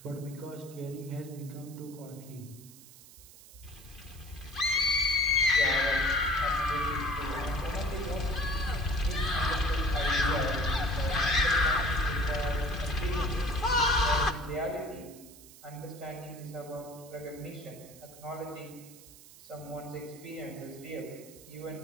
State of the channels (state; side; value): noise; right; hiss, 20 dB below the sound